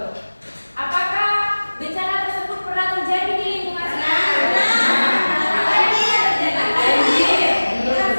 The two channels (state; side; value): inverted; both; correlation -1.00